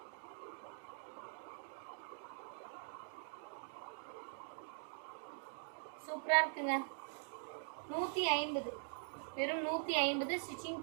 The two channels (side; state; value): left; silent; digital silence